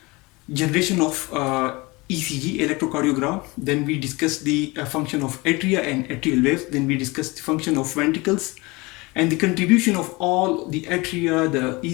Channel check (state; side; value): quieter; right; 24.3 dB